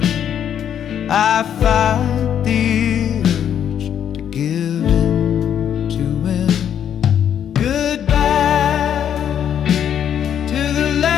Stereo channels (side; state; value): right; quieter; 9.3 dB